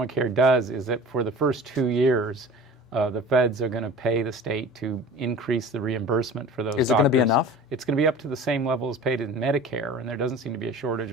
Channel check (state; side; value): normal; both; correlation 0.39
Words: does is that for the first 2 years, the feds are going to pay the state to increase the reimbursement for those doctors. Is it going to be enough? It's going to be up to the same level as paid in Medicare, and there doesn't seem to be a shortage